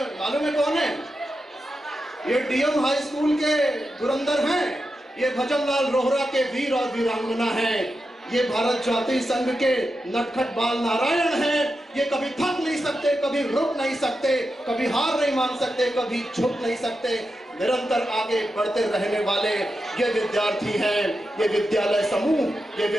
मालूम है कौन है? ये डीएम हाई स्कूल के धुरंधर हैं, ये भजनलाल रोहरा के वीर और वीरांगना हैं, ये भारत जाति संघ के नटखट बाल नारायण हैं। ये कभी थक नहीं सकते, कभी रुक नहीं सकते, कभी हार नहीं मान सकते, कभी झुक नहीं सकते, निरंतर आगे बढ़ते रहने वाले ये विद्यार्थी हैं। ये विद्यालय समूह, ये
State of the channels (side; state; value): both; normal; correlation 0.89